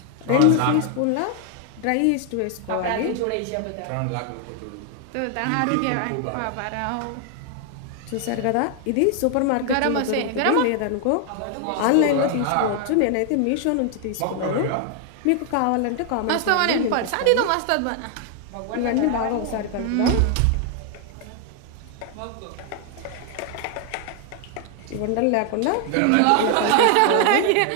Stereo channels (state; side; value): different; both; correlation 0.00